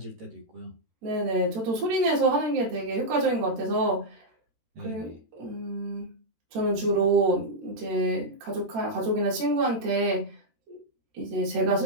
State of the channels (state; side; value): late; left; 13 ms